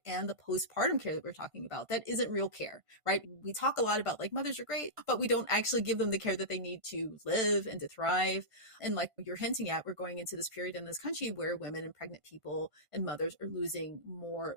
and the postpartum care that we're talking about. That isn't real care, right? We talk a lot about like mothers are great, but we don't actually give them the care that they need to live and to thrive. And like you're hinting at, we're going into this period in this country where women and pregnant people and mothers are losing more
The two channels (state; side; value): late; left; 1.5 ms